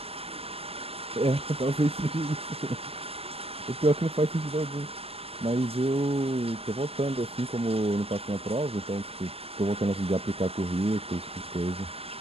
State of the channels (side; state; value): left; late; 0.28 ms